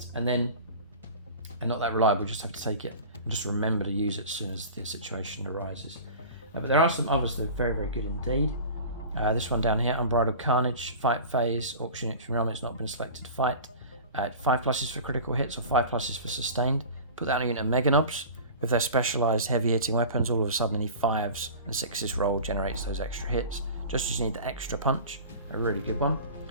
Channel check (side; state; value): both; inverted; correlation -0.37